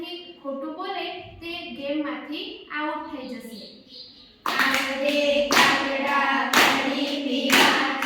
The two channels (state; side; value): identical; both; correlation 1.00